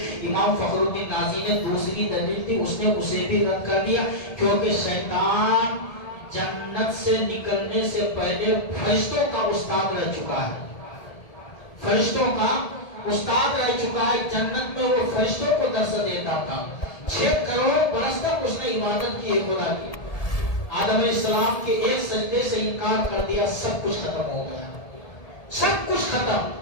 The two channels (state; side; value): late; right; 1.7 ms